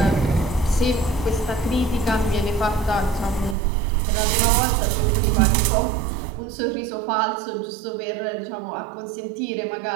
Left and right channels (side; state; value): left; drops out; at 3.6 s